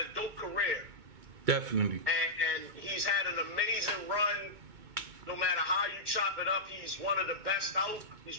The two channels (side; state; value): left; late; 2.2 ms